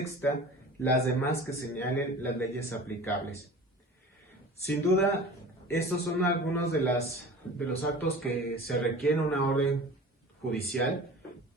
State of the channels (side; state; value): both; normal; correlation 0.39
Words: las demás que señalen las leyes aplicables. Sin duda, estos son algunos de los actos que se requieren una orden judicial,